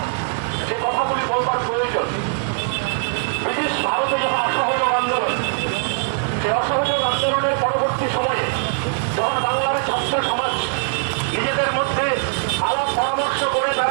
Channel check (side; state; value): left; silent; digital silence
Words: যে কথাগুলি বলবার প্রয়োজন। ব্রিটিশ ভারতে যখন অসহযোগ আন্দোলন, যে অসহযোগ আন্দোলনের পরবর্তী সময়ে যখন বাংলার ছাত্র সমাজ নিজেদের মধ্যে আলাপ পরামর্শ করে